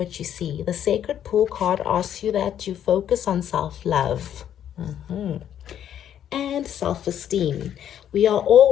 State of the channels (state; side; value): quieter; right; 10.0 dB